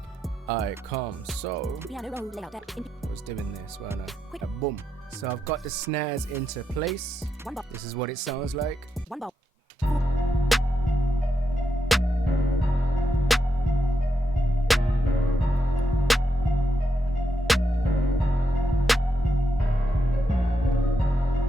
Alright, calm. So Piano roll layout deck. I was doing this, weren't I? Quick. Boom. So I've got the snares into place. 1 bar. This is what it sounds like. 1 bar.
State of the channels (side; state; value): both; normal; correlation 0.83